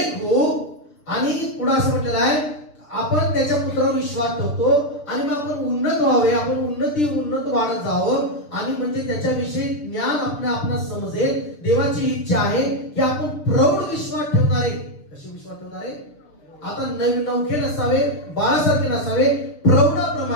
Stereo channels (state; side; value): late; right; 6.9 ms